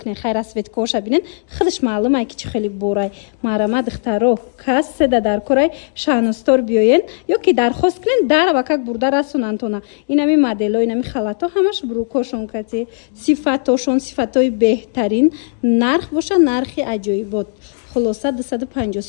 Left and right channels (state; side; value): silent; right; digital silence